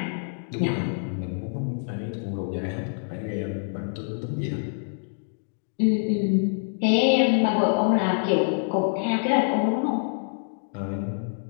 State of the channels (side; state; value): right; silent; digital silence